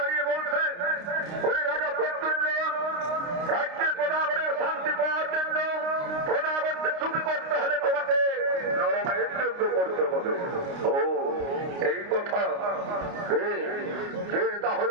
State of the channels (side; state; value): left; late; 29 ms